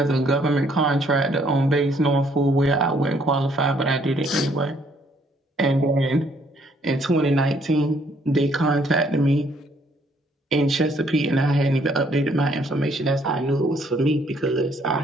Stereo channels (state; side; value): normal; both; correlation 0.66